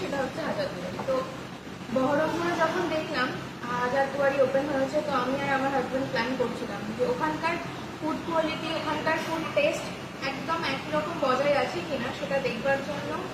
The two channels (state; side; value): identical; both; correlation 1.00